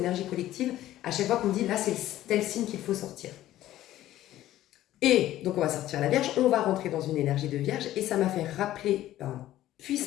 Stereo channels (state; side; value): quieter; right; 14.0 dB